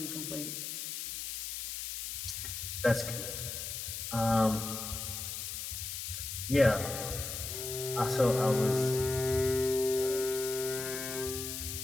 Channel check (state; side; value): noise; left; hiss, 5 dB below the sound